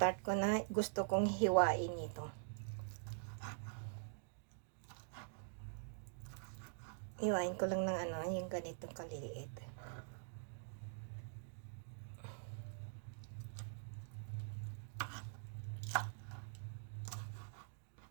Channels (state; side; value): silent; left; digital silence